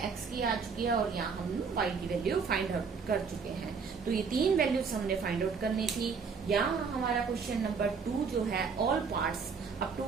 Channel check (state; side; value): quieter; left; 5.5 dB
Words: x की आ चुकी है, और यहाँ हम y की वैल्यू फाइंड आउट कर चुके हैं। तो ये तीन वैल्यूज हमने फाइंड आउट करनी थी। यहाँ हमारा क्वेश्चन नंबर 2 जो है, all parts up to